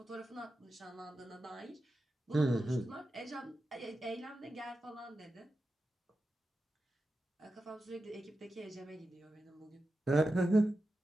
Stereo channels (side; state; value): both; normal; correlation 0.91